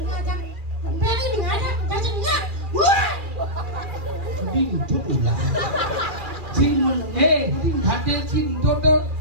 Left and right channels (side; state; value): left; late; 2.4 ms